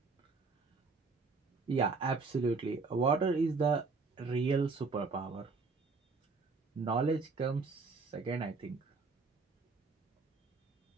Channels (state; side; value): quieter; left; 4.3 dB